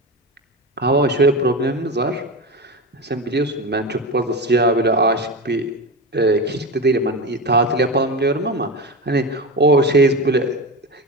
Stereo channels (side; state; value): both; normal; correlation 0.22